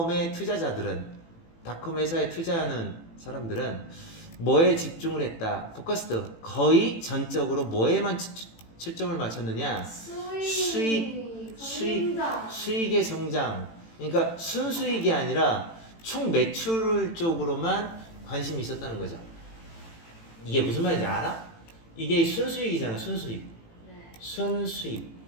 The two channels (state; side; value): late; right; 18 ms